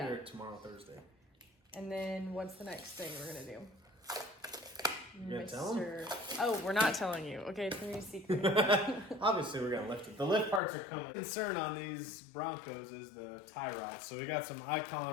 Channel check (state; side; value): drops out; right; at 10.6 s